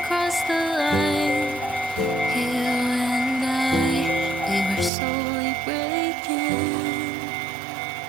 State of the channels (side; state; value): left; drops out; at 4.9 s